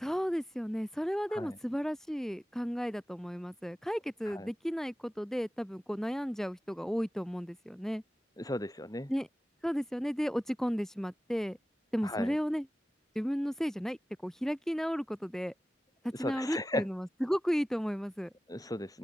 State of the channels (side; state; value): both; normal; correlation 0.95